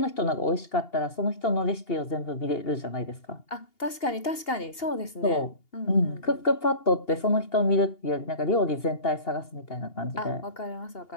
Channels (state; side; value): late; right; 2.8 ms